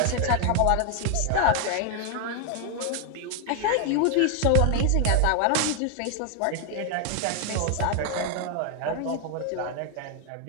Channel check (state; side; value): different; both; correlation 0.00